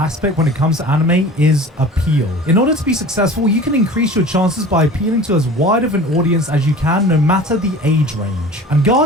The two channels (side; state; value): both; normal; correlation 0.40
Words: when it comes to anime is appeal. In order to be successful, you can increase your chances by appealing to as wide of an audience as you can, no matter the age range. And